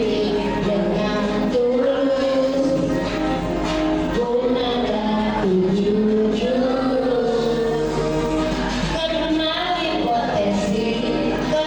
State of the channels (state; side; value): identical; both; correlation 1.00